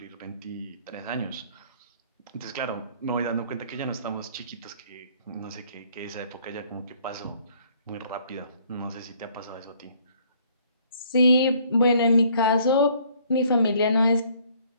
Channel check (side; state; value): both; inverted; correlation -0.61